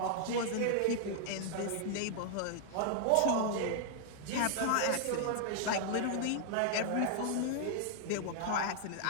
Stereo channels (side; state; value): both; different; correlation 0.00